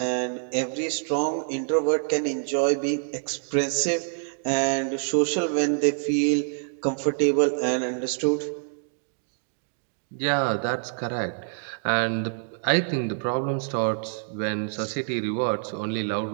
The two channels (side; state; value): left; silent; digital silence